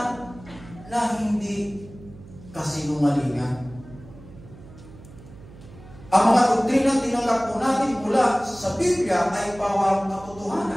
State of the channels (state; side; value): noise; right; hum, 19 dB below the sound